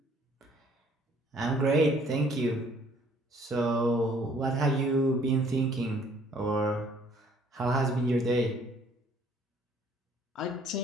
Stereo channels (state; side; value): normal; both; correlation 0.60